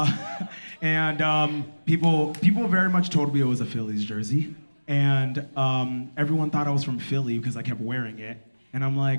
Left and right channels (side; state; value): both; inverted; correlation -1.00